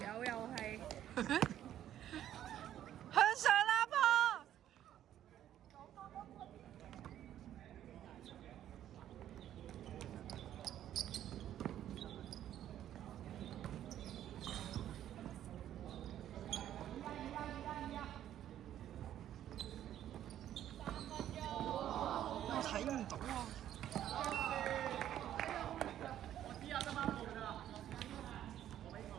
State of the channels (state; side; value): quieter; left; 11.4 dB